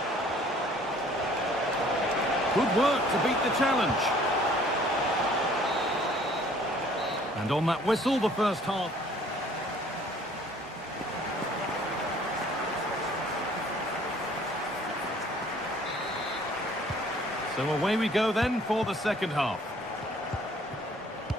Good work to beat the challenge. And on that whistle, the first half. So away we go then for the second half.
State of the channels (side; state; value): both; normal; correlation 0.56